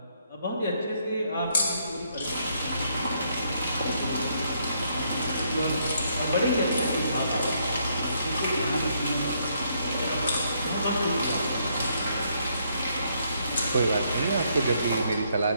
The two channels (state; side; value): inverted; both; correlation -0.72